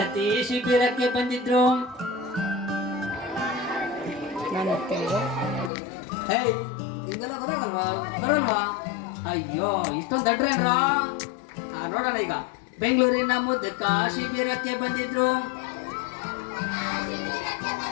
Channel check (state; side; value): drops out; right; at 5.7 s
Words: ಶಿಬಿರಕ್ಕೆ ಬಂದಿದ್ರು. ಹಿಂಗೆಲ್ಲ ಗೊತ್ತಾಗಲ್ವಾ? ಬರಲ್ವಾ? ಅಯ್ಯೋ ಇಷ್ಟೊಂದು ದಡ್ರೇನ್ರ? ನೋಡೋಣ ಈಗ. ಬೆಂಗಳೂರಿನ ಮುದುಕ ಶಿಬಿರಕ್ಕೆ ಬಂದಿದ್ರು.